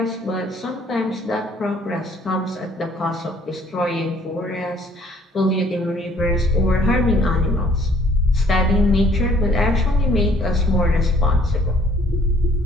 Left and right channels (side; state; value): both; normal; correlation 0.60